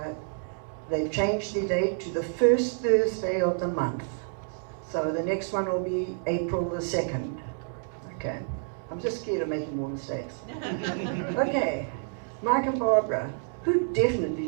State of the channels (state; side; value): silent; left; 59 dB below the other